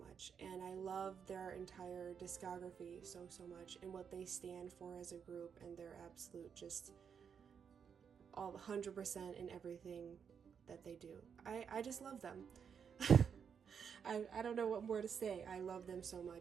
and I love their entire discography so much, and what they stand for as a group, and their absolute just all 100% in everything that they do. I just love them. I don't know what more to say. I love them so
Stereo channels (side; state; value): left; quieter; 7.0 dB